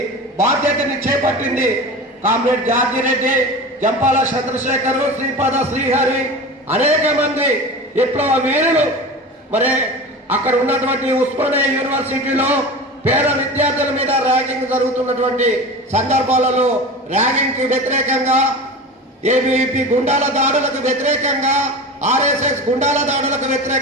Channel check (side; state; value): both; normal; correlation 0.31